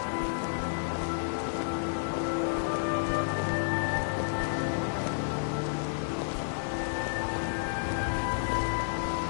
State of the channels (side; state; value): right; silent; digital silence